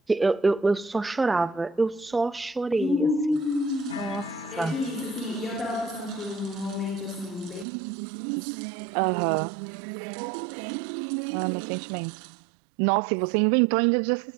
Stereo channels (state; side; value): drops out; left; at 7.7 s